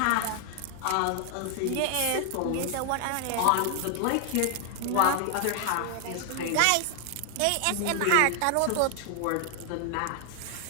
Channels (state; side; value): different; both; correlation 0.00